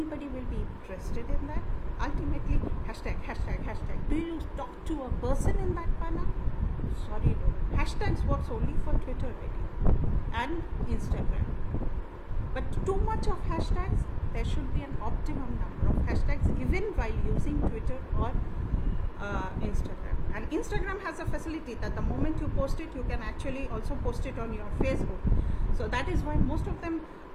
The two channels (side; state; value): both; identical; correlation 1.00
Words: will be interested in that? Ultimately, hashtag. Do you talk to a person in that manner? Sorry, no. Hashtags works only for Twitter really and Instagram. But too much of hashtags, there should be an optimum number of hashtags even while using Twitter or Instagram. And Instagram has a facility that the moment you post it, you can actually also post it on your Facebook. So that is why most of them